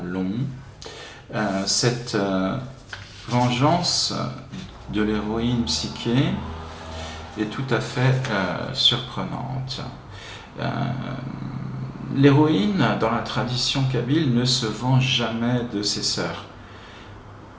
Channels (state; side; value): identical; both; correlation 1.00